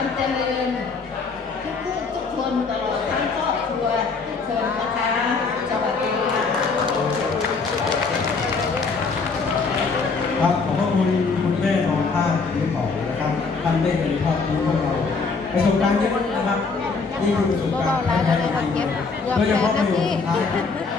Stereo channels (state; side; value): quieter; right; 4.5 dB